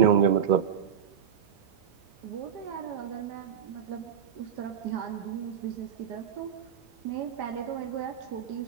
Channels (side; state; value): left; quieter; 8.3 dB